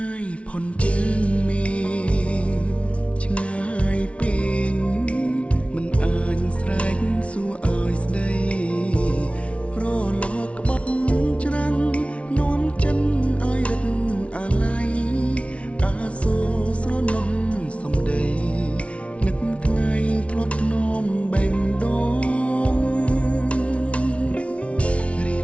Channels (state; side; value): late; right; 0.062 ms